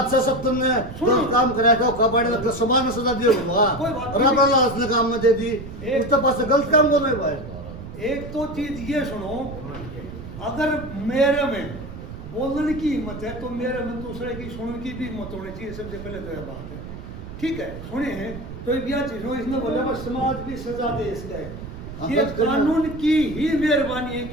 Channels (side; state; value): right; noise; rumble, 11 dB below the sound